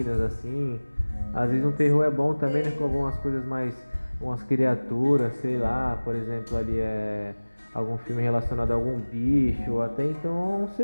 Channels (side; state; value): both; inverted; correlation -1.00